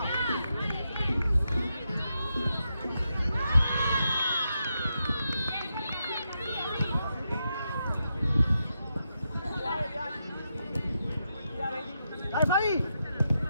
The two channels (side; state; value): both; inverted; correlation -0.85